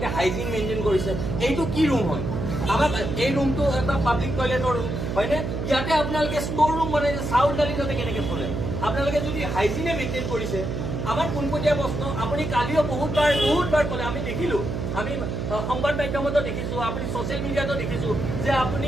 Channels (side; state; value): right; noise; hum, 3 dB below the sound